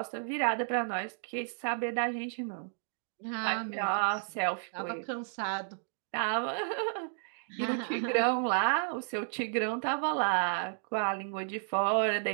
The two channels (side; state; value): left; silent; digital silence